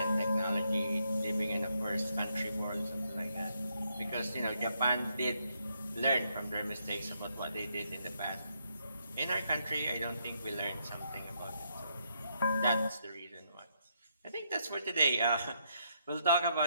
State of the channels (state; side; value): inverted; both; correlation -0.76